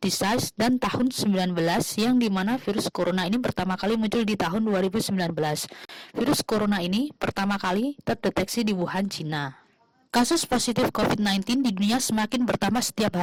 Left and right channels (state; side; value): identical; both; correlation 1.00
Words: dan tahun 19 yang dimana virus corona ini pertama kali muncul di tahun 2019. Virus corona ini pertama kali terdeteksi di Wuhan, Cina. Kasus positif COVID-19 di dunia semakin bertambah setiap